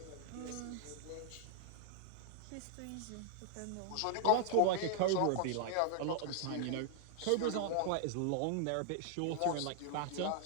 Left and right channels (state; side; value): different; both; correlation -0.01